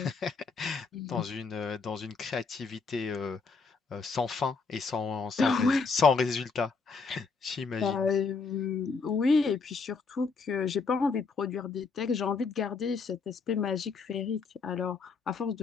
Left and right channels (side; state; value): right; quieter; 4.7 dB